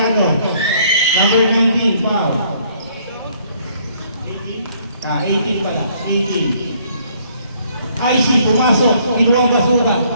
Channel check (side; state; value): both; inverted; correlation -0.64